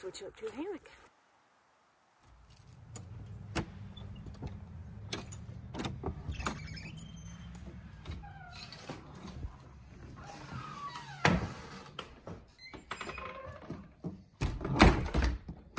up to a hammock.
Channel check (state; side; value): identical; both; correlation 1.00